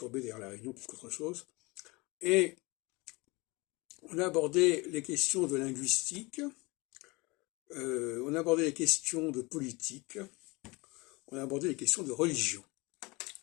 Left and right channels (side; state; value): right; quieter; 25.0 dB